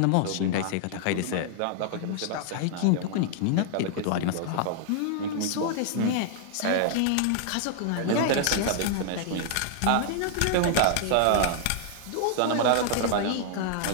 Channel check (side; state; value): both; different; correlation -0.01